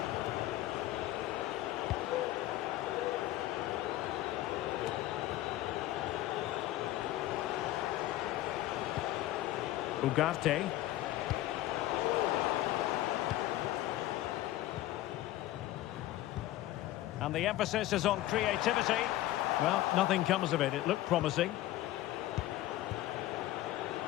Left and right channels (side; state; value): right; quieter; 15.2 dB